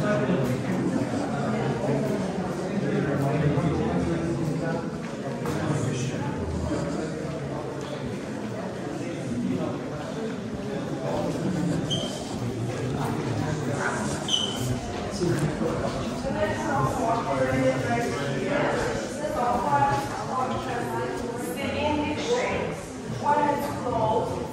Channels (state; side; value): identical; both; correlation 1.00